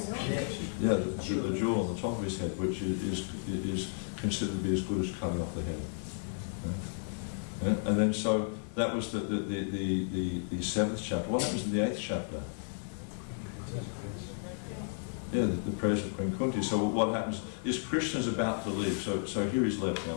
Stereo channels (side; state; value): right; silent; 56 dB below the other